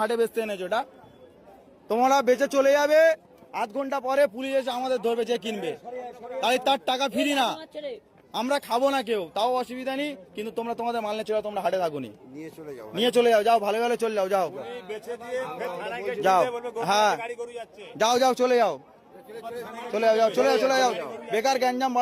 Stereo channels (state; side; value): identical; both; correlation 1.00